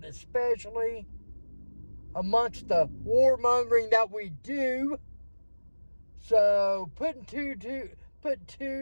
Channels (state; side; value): inverted; both; correlation -1.00